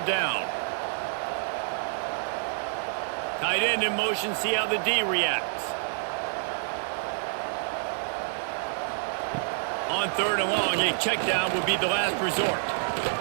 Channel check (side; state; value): left; silent; 57 dB below the other